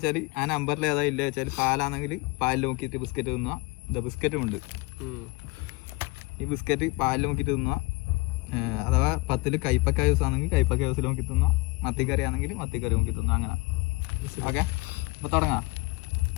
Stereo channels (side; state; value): right; quieter; 25.3 dB